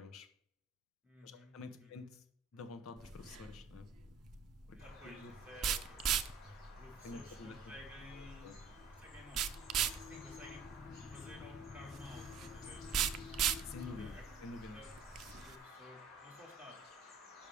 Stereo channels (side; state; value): left; quieter; 5.2 dB